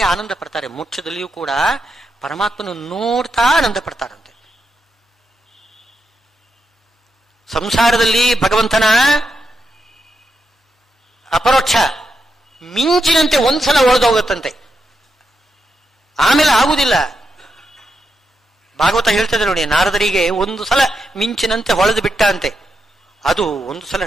ಆನಂದ ಪಡ್ತಾರೆ. ಮೋಕ್ಷದಲ್ಲಿಯೂ ಕೂಡ ಪರಮಾತ್ಮನನ್ನು ನೋಡ್ತಾ ಆನಂದ ಪಡ್ತಾರಂತೆ. ಸಂಸಾರದಲ್ಲಿ ಭಗವಂತನ ಅಪರೋಕ್ಷ ಮಿಂಚಿನಂತೆ ಒಂದ್ಸಲ ಒಡೆದೋಗುತ್ತಂತೆ, ಆಮೇಲೆ ಆಗುವುದಿಲ್ಲ. ಭಾಗವತ ಹೇಳ್ತದೆ ನೋಡಿ, ನಾರದರಿಗೆ ಒಂದು ಸಲ ಮಿಂಚಿನಂತೆ ಹೊಳೆದು ಬಿಟ್ಟ ಅಂತೆ. ಅದು ಒಂದು ಸಲ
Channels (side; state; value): both; normal; correlation 0.85